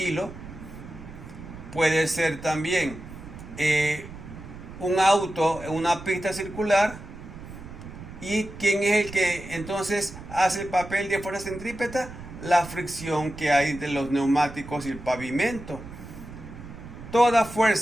Puede ser también un auto en una pista circular. ¿Y quién es el que entonces hace el papel de fuerza centrípeta? La fricción que hay entre los neumáticos y el pavimento. Toda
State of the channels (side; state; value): right; noise; rumble, 14 dB below the sound